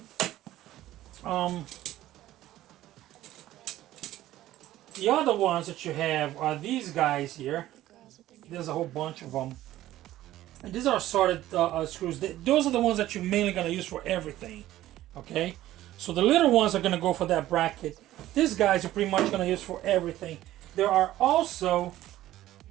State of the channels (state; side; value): quieter; left; 14.5 dB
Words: The other ones that you have are these guys here. There's a whole bunch of them. And these are solid screws. Those are the ones that you're mainly gonna use for everything. Okay. So the little ones are gonna go for that bracket. These guys are pretty much gonna use for everything. There are also